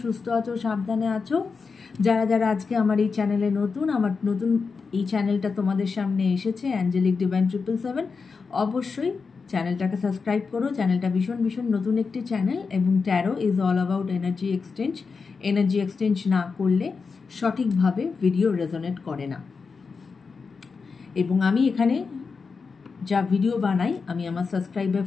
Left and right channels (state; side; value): quieter; right; 4.9 dB